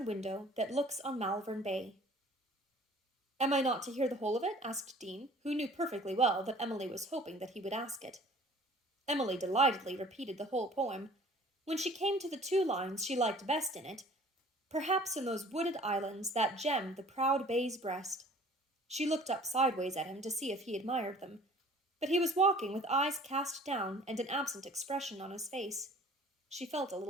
window that looks on Malvern Bay. Am I not to hear the whole of it? Asked Dean, who knew perfectly well that Emily was hoping that he would ask it. Emily delightedly repeated the whole poem. When she came to the 2 lines she liked best in it, perhaps in those wooded islands that gem the proud bay's breast. She looked up sideways at him to see if he admired them, but he was walking with eyes cast down and an absent expression on his face. She felt a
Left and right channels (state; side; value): normal; both; correlation 0.50